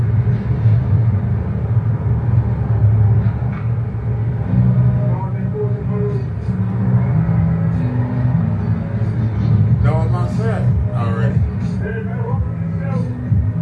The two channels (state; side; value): identical; both; correlation 1.00